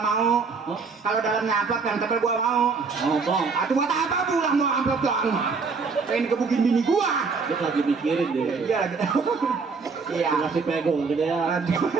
mau. Hah? Kalau dalamnya amplop yang tebel gua mau. Oh, bang. Atuh buat apa pulang mau amplop doang mah? Pengen kebukin bini gua. Dia lagi mikirin deh. Iya lagi. Iya. Kasih pegong gede ya.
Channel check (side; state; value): left; quieter; 4.8 dB